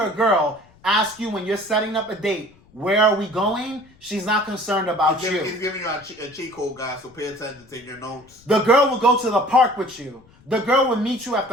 a girl ask you when you're setting up a date, where are we going? She's not concerned about you. He's giving you a cheat code, guys, so pay attention, take your notes. The girl will go to the park with you. The girl will meet you at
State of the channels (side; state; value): left; noise; rumble, 28 dB below the sound